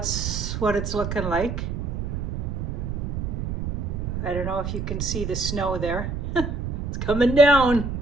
what it's looking like. I don't know if you can see the snow there. It's coming down.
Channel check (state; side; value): noise; right; rumble, 3 dB below the sound